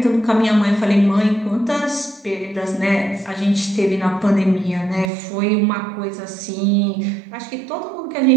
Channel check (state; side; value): drops out; left; at 5.1 s